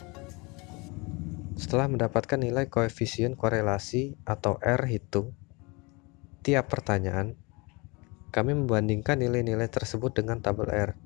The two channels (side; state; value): right; quieter; 27.1 dB